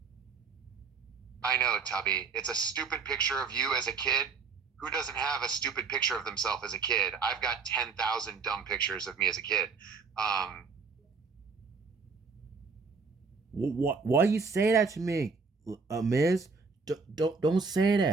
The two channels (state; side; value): quieter; left; 5.0 dB